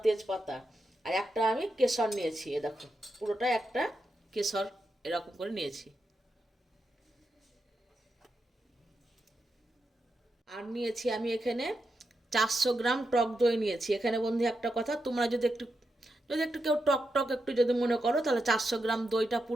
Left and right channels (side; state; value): both; normal; correlation 0.86